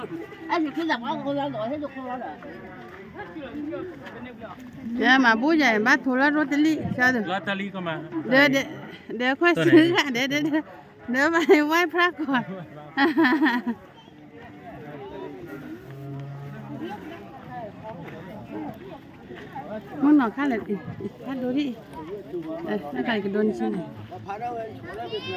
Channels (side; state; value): both; identical; correlation 1.00